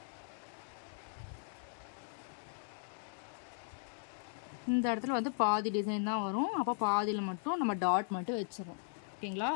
இந்த இடத்துல வந்து பாதி டிசைன் தான் வரும். அப்போ பாதியில் மட்டும் நம்ம டாட் மட்டும் வச்சிடறோம். ஓகேங்களா?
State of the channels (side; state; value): right; silent; digital silence